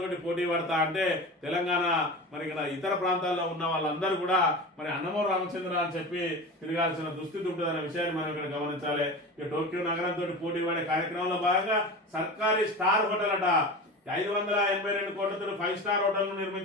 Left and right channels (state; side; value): normal; both; correlation 0.30